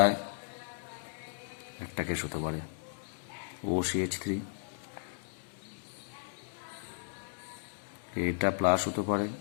একটা কেস হতে পারে OCH3, এইটা প্লাস হতে পারে,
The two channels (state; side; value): silent; right; digital silence